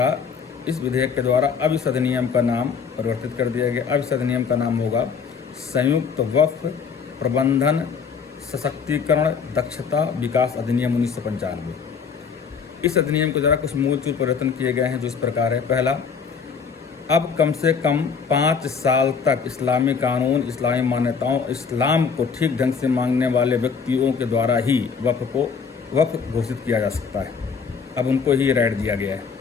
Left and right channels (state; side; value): quieter; right; 6.0 dB